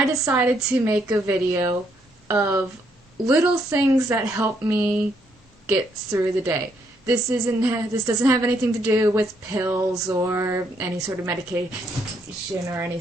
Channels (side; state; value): both; normal; correlation 0.73